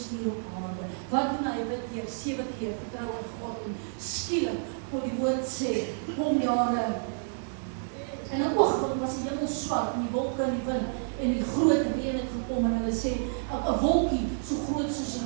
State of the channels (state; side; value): silent; left; 58 dB below the other